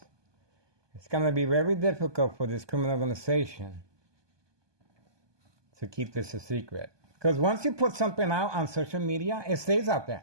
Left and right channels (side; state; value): left; late; 1.2 ms